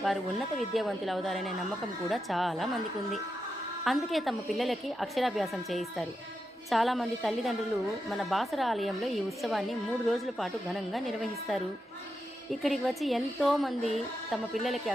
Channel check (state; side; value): normal; both; correlation 0.87